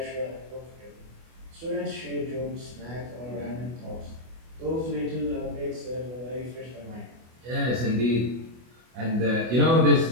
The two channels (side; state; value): left; late; 24 ms